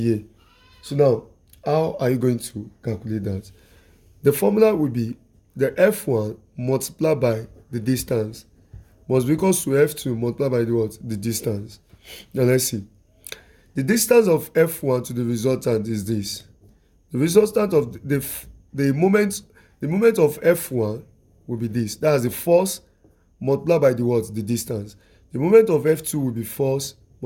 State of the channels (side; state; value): both; identical; correlation 1.00